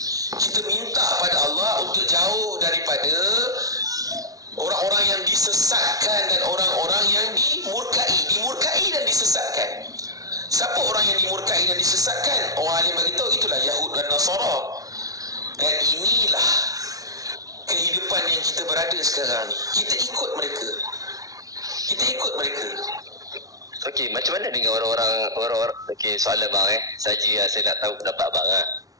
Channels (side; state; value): left; late; 0.18 ms